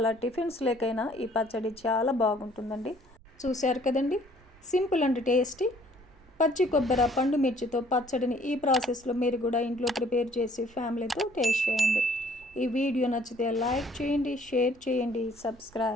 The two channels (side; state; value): right; noise; rumble, 26 dB below the sound